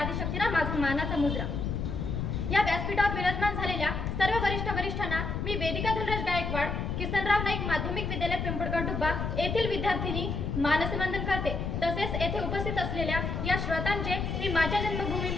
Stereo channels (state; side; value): noise; left; rumble, 2 dB below the sound